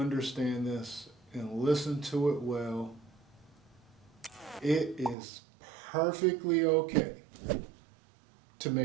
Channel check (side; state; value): left; drops out; at 5.2 s